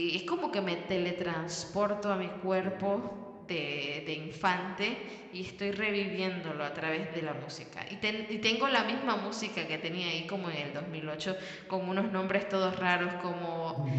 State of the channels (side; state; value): both; identical; correlation 1.00